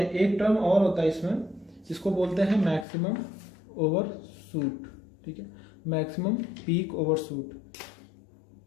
एक टर्म और होता है इसमें जिसको बोलते हैं मैक्सिमम ओवरशूट। ठीक है, मैक्सिमम पीक ओवरशूट,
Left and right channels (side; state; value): right; drops out; at 2.9 s